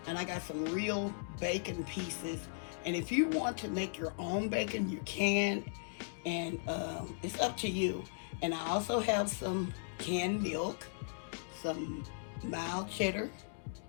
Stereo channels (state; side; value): silent; right; digital silence